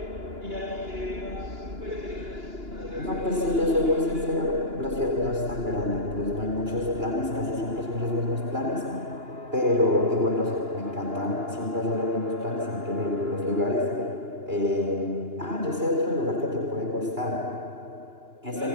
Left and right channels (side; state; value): left; late; 2.9 ms